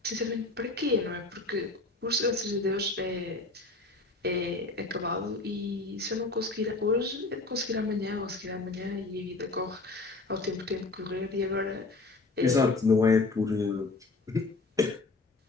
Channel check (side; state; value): right; quieter; 3.5 dB